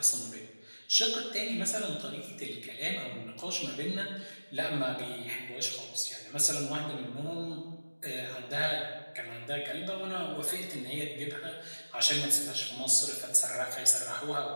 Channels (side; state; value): both; inverted; correlation -1.00